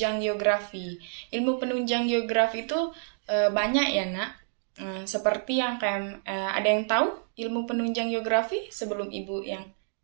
geografi. Ilmu penunjang geografi itu banyak ya, Nak. Seperti yang ada yang tahu ilmu penunjang geografi sebelum Ibu yang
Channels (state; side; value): silent; left; digital silence